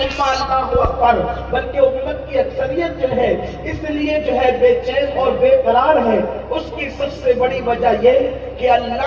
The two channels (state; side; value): identical; both; correlation 1.00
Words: امہ اللہ اکبر، بلکہ امت کی اکثریت جو ہے اس لیے جو ہے بے چین اور بے قرار ہے. اس کی سب سے بڑی وجہ یہ کہ